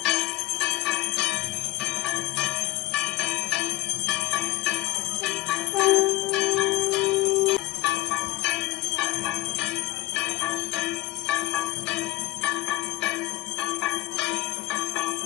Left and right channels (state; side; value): quieter; right; 17.9 dB